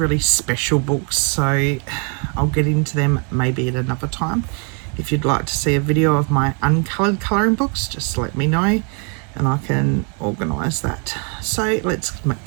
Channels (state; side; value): quieter; left; 38.0 dB